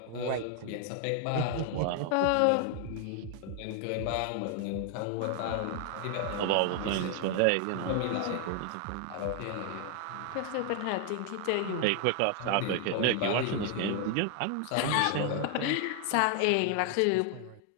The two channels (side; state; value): both; different; correlation 0.00